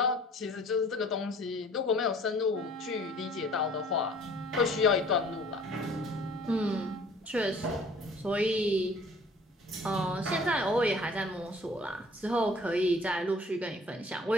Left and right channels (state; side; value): normal; both; correlation 0.52